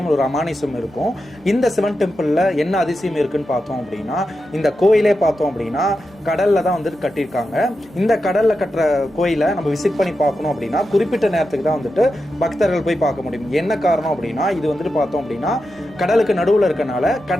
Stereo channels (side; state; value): both; normal; correlation 0.89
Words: ஒரு அமானுஷம் இருக்கும். இந்த சிவன் டெம்பிளில் என்ன அதிசயம் இருக்குன்னு பார்த்தோம் அப்படின்னா, இந்த கோயிலே பார்த்தோம் அப்படின்னா கடலில் தான் வந்துட்டு கட்டியிருக்காங்க. இந்த கடலில் கட்டுற கோயிலை நம்ம விசிட் பண்ணி பார்க்கணும் அப்படின்னா குறிப்பிட்ட நேரத்துக்கு தான் வந்துட்டு பக்தர்கள் போய் பார்க்க முடியும். என்ன காரணம் அப்படின்னா, இது வந்துட்டு பார்த்தோம் அப்படின்னா கடலுக்கு நடுவில் இருக்கனால